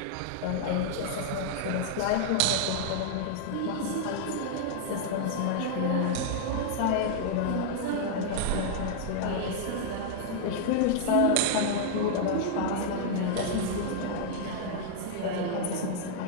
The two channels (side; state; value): both; different; correlation -0.01